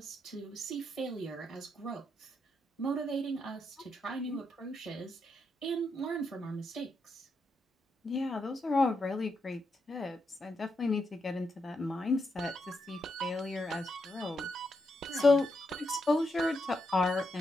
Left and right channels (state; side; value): normal; both; correlation 0.82